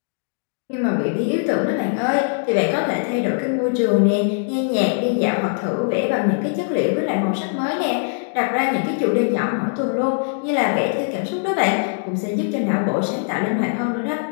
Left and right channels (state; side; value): silent; right; digital silence